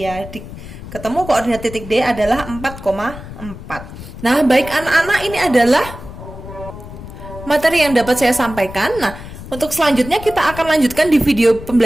Ketemu koordinat titik D adalah 4,4. Nah, baik anak-anak, ini adalah materi yang dapat saya sampaikan. Nah, untuk selanjutnya kita akan lanjutkan di video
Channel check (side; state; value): left; noise; rumble, 13 dB below the sound